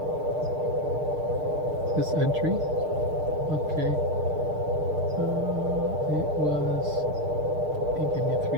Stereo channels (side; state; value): left; late; 6.6 ms